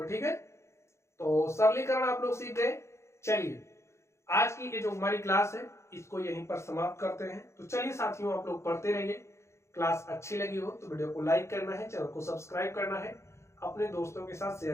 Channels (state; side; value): late; right; 0.13 ms